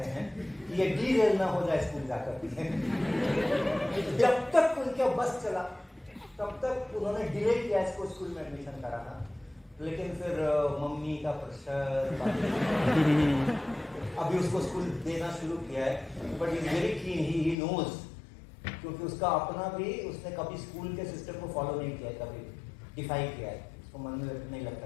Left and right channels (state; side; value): drops out; right; at 17.6 s